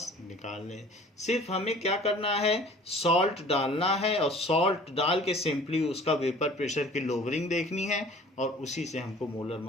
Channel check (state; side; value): normal; both; correlation 0.48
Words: निकाल लें। सिर्फ हमें क्या करना है, सॉल्ट डालना है, और सॉल्ट डाल के सिंपली उसका वेपर प्रेशर की लोवरिंग देखनी है, और उसी से हमको मोलर